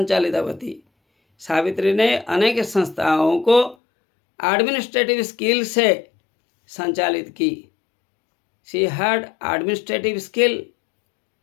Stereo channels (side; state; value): right; drops out; at 3.8 s